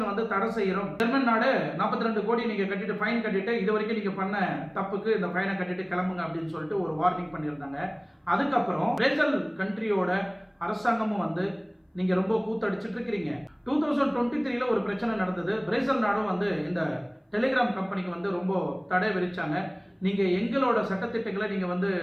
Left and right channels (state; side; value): identical; both; correlation 1.00